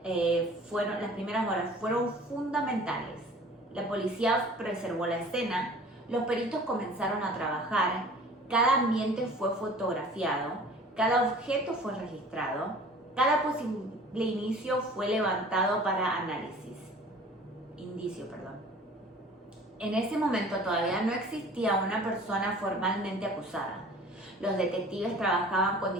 fueron fundamentales. La policía preservó la escena, los peritos comenzaron a trabajar, cada ambiente fue fotografiado, cada objeto fue registrado, cada posible indicio fue levantado para indicio. En ese momento todavía no existía una persona formalmente acusada. Los detectives trabajaban con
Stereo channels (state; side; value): normal; both; correlation 0.46